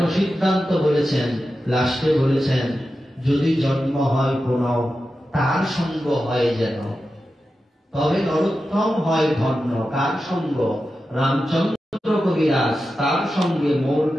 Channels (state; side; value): normal; both; correlation 0.91